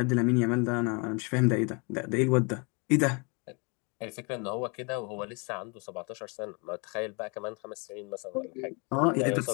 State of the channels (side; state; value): right; quieter; 32.5 dB